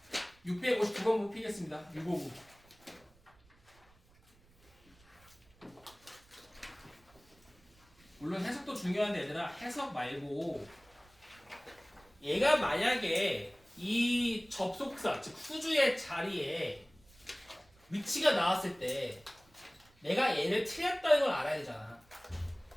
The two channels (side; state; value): right; noise; rumble, 29 dB below the sound